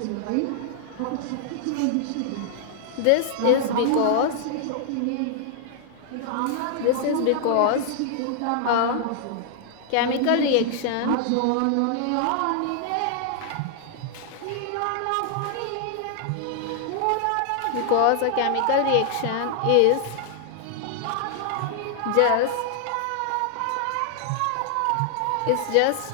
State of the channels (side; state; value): both; different; correlation -0.01